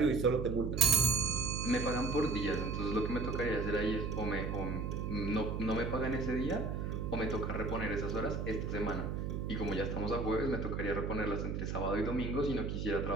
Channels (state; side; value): noise; right; hum, 2 dB below the sound